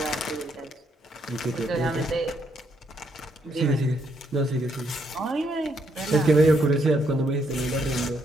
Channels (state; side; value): normal; both; correlation 0.74